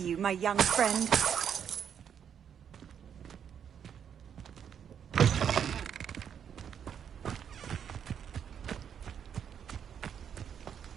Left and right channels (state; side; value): quieter; left; 8.2 dB